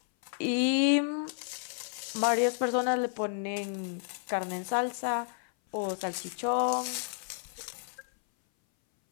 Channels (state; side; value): silent; right; 57 dB below the other